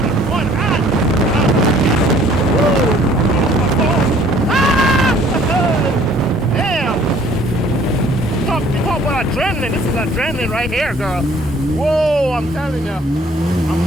with one hand. Woo! My phone. Ah! Damn! You talk about adrenaline. This is adrenaline right here, girl. Whoa, I'm telling you.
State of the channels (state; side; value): normal; both; correlation 0.57